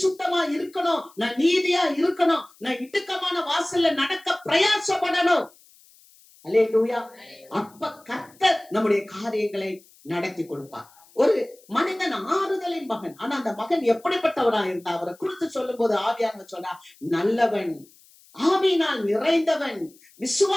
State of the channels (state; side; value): noise; left; hiss, 27 dB below the sound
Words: இருக்கணும், நான் நீதியா இருக்கணும், நான் இடுக்கமான வாசல்ல நடக்க பிரயாசப்படணும். அல்லேலூயா. அப்ப கர்த்தர் நம்முடைய காரியங்களை நடத்தி கொடுப்பார். ஒரு மனிதன் ஆறுதலின் மகன். ஆனா அந்த மகன் எப்படிப்பட்டவரா இருந்தா அவரை குறித்து சொல்லும் போது ஆவியானவர் சொன்னா, நல்லவன், ஆவியினால் நிறைந்தவன்,